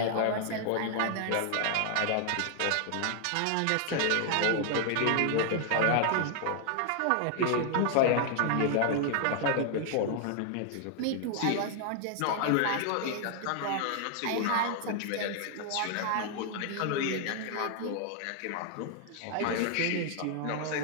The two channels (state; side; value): different; both; correlation 0.00